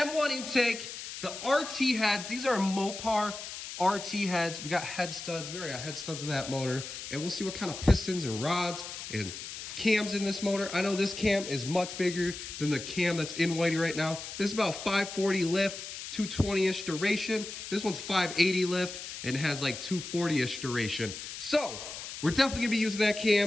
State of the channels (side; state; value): left; noise; hiss, 9 dB below the sound